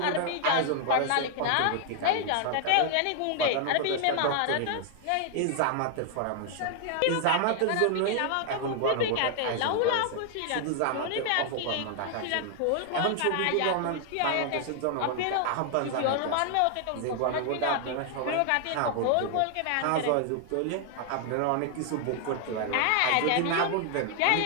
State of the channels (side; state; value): both; different; correlation 0.00